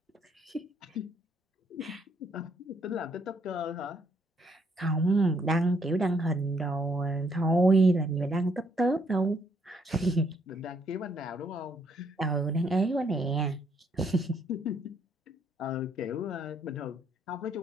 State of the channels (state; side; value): normal; both; correlation 0.70